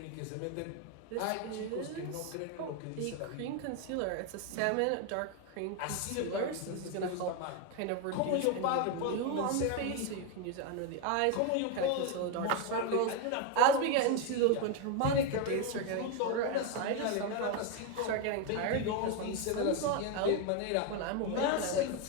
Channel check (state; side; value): different; both; correlation 0.02